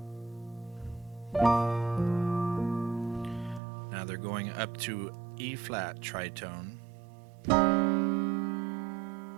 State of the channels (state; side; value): drops out; left; at 3.6 s